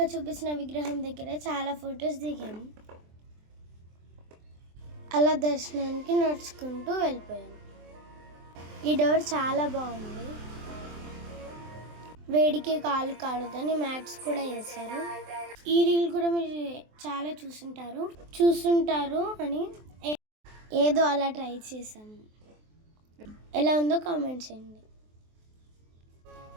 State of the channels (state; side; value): late; left; 23 ms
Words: చూపించిన విగ్రహం దగ్గర చాలా ఫొటోస్ దిగాము. అలా దర్శనానికి నడుచుకుంటూ వెళ్ళిపోయాం. ఈ డోర్ చాలా బాగుంది. వేడికి కాలు కాలుదని మ్యాట్స్ కూడా వేశారు. ఈ రీల్ కూడా మీరు చాలా చూసుంటారు అని ఏదో అలా ట్రై చేసాము. ఎలా ఉందో కామెంట్ చేయండి.